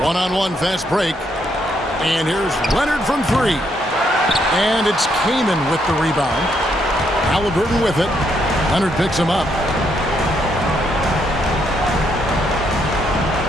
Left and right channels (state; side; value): normal; both; correlation 0.75